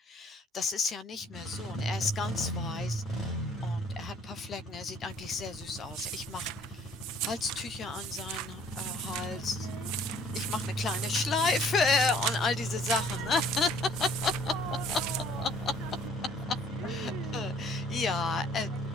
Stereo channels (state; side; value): normal; both; correlation 0.57